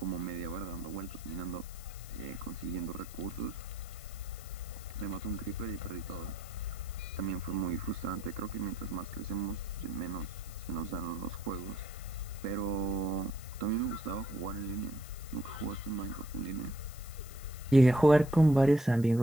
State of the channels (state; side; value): noise; left; hiss, 17 dB below the sound